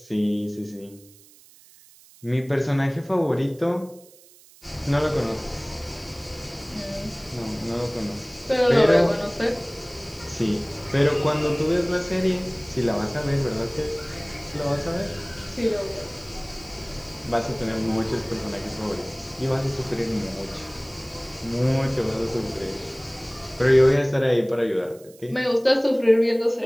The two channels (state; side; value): noise; right; hiss, 25 dB below the sound